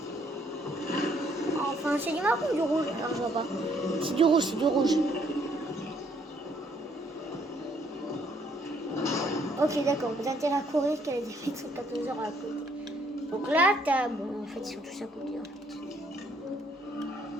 Enfin, c'est du marron ou du rouge? Alors, je vois pas. C'est du rouge, Ok, d'accord. Vous avez intérêt à courir qu'elle a des fêtes sur 14 heures à côté. Donc là, t'as... Bon, en fait, ils sont tous à côté, en fait.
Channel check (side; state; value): both; normal; correlation 0.67